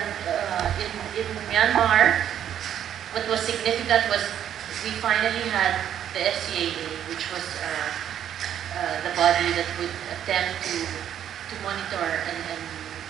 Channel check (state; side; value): quieter; left; 10.0 dB